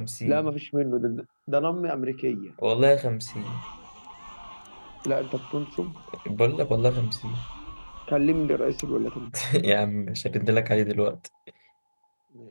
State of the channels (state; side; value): inverted; both; correlation -1.00